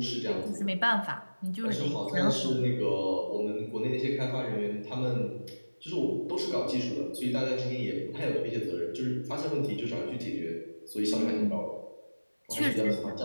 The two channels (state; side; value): inverted; both; correlation -1.00